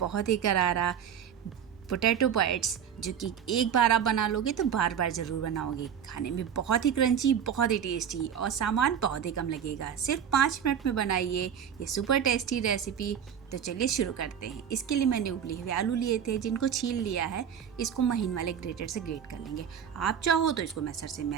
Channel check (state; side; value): quieter; left; 8.4 dB